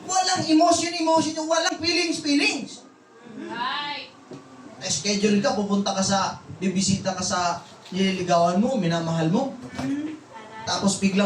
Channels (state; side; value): identical; both; correlation 1.00